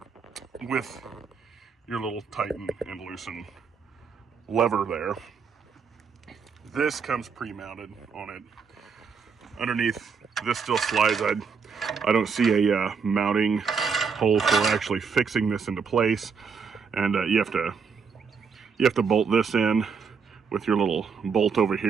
with your little tighten and loosen lever there. This comes pre-mounted on it. Underneath, this still slides. I don't see a mounting hole for actually fixing this into place. And you have to bolt this in with your little bolt over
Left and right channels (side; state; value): left; quieter; 5.8 dB